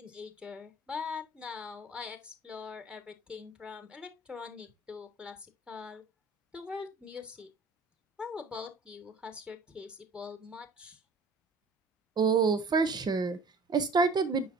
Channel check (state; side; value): quieter; left; 3.4 dB